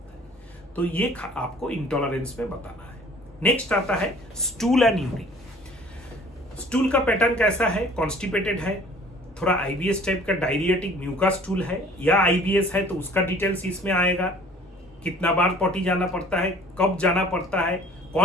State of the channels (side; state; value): both; normal; correlation 0.51